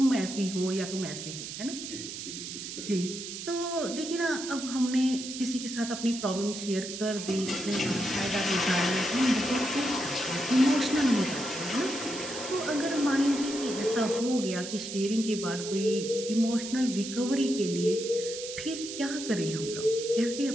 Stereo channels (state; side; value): noise; right; hiss, 8 dB below the sound